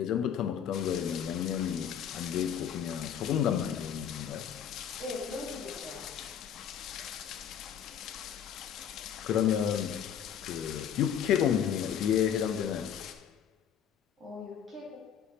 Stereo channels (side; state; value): right; quieter; 8.6 dB